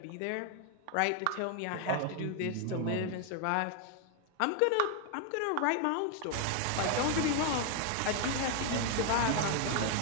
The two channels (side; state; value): both; different; correlation 0.00